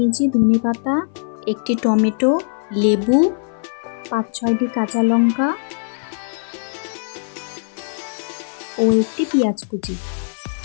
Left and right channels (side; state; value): right; silent; 58 dB below the other